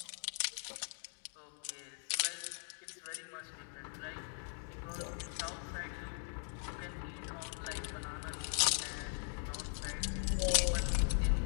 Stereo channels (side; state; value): right; silent; 51 dB below the other